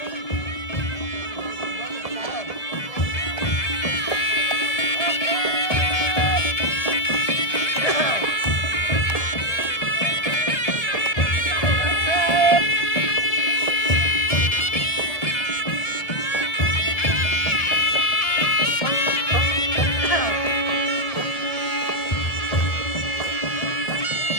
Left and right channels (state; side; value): late; right; 1.7 ms